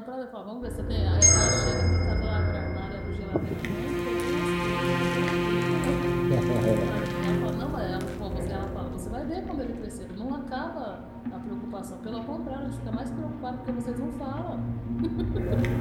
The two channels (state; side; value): identical; both; correlation 1.00